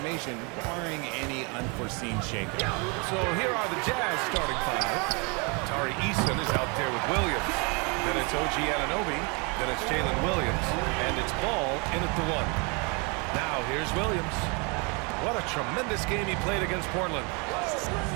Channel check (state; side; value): quieter; left; 31.7 dB